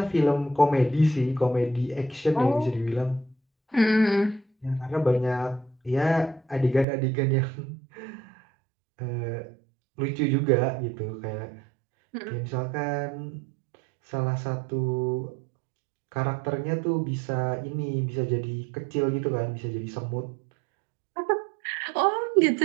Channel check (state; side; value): drops out; left; at 6.9 s